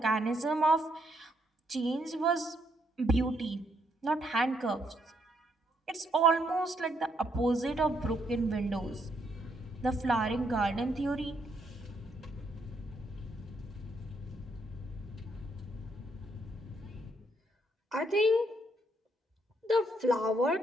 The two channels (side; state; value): both; normal; correlation 0.74